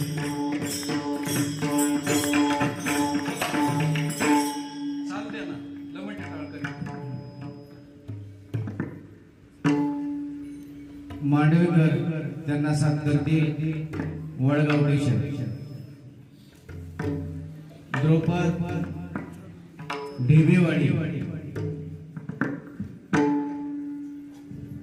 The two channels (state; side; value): identical; both; correlation 1.00